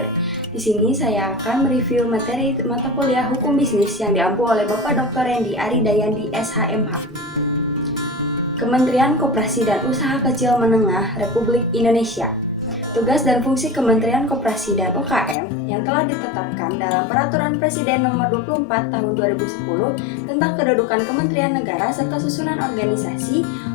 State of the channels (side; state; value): right; drops out; at 15.4 s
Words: Di sini saya akan mereview materi mata kuliah Hukum Bisnis yang diampu oleh Bapak Dr. Rendi Aridayandi SHMH. Kementerian Koperasi dan Usaha Kecil Menengah Republik Indonesia. Tugas dan fungsi Kementerian Koperasi dan UKM yang telah ditetapkan dalam Peraturan Presiden Nomor 24 Tahun 2010 tentang kedudukan Kementerian Negara serta susunan organisasi,